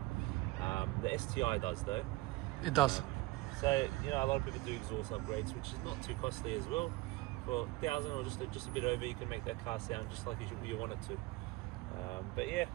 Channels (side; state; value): left; quieter; 20.8 dB